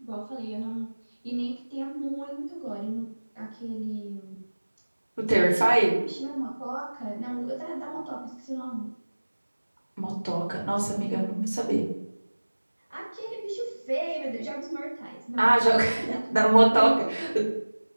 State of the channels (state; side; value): inverted; both; correlation -1.00